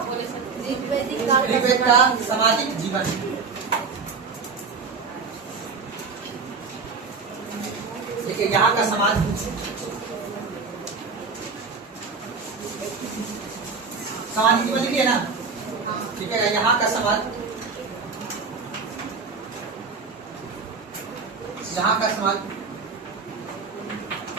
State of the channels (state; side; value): quieter; left; 4.9 dB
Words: ऋग्वेद का सामाजिक जीवन देखिए यहाँ का समाज सामाजिक जीवन लिखिए ना ठीक है यहाँ का समाज यहाँ का समाज